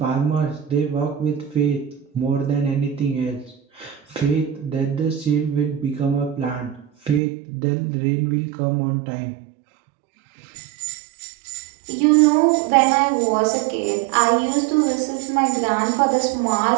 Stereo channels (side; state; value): left; drops out; at 7.2 s